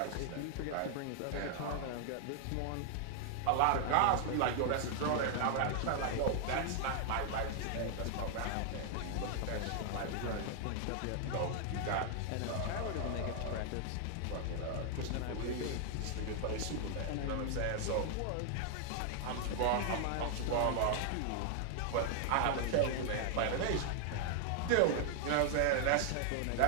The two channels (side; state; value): both; different; correlation 0.00